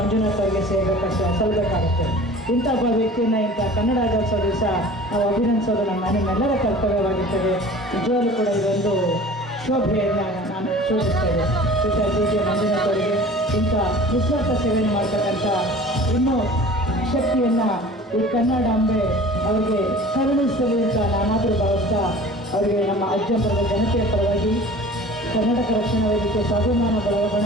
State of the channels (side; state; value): both; normal; correlation 0.43